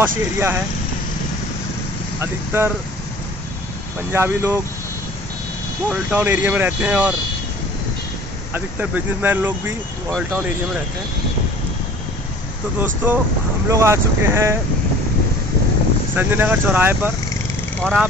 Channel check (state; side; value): normal; both; correlation 0.47